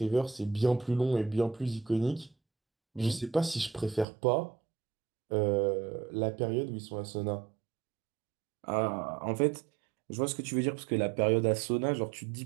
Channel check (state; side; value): drops out; left; at 4.0 s